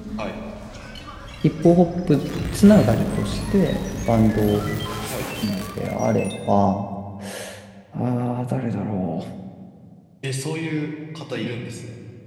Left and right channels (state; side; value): identical; both; correlation 1.00